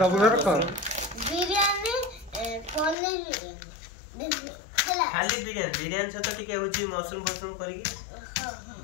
कर बिरयानी पनीर खाली बिरयानी से तो टिके होची मशरूम फशरूम करके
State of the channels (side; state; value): right; drops out; at 3.0 s